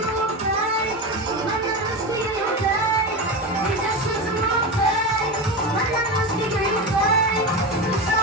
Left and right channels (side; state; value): both; normal; correlation 0.20